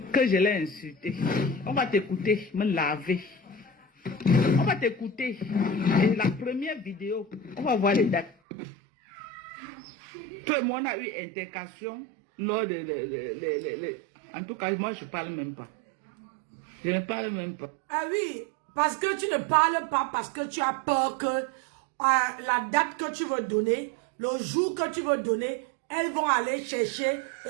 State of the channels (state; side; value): drops out; left; at 8.3 s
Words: Que je l'ai insulté. On va t'écouter, me laver. On va t'écouter. Et la première vidéo, on va voir les dates. Toi et moi, on a eu intercation lors de... En tout cas, moi, je ne parle même pas. Je ne parle même pas. Ah oui, parce que tu ne parles pas, parce que tu as peur que la date que tu veux donner, le jour que tu veux donner, elles vont aller chercher et